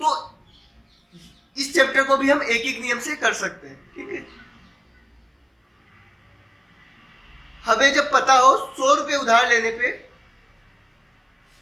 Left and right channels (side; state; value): both; identical; correlation 1.00